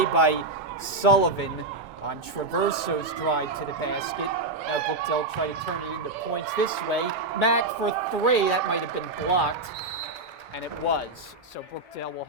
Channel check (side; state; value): left; quieter; 3.2 dB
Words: by Sullivan on Traverso's drive to the basket. Now Brookdale try to turn it into points this way. Mack for 3, that might have been blocked. And it was, so Brookdale will